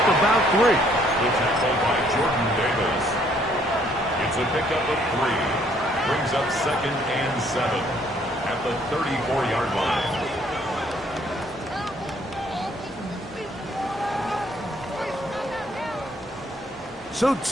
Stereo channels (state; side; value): normal; both; correlation 0.64